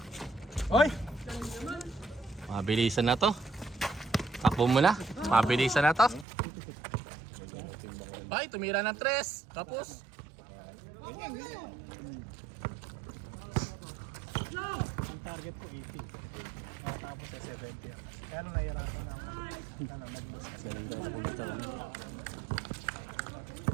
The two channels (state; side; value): drops out; left; at 6.2 s